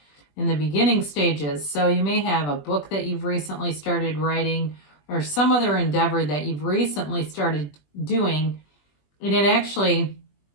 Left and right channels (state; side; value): late; right; 20 ms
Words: In the beginning stages. So you may have a book that you've recently started writing, or some other endeavor that you've recently started doing. And it actually,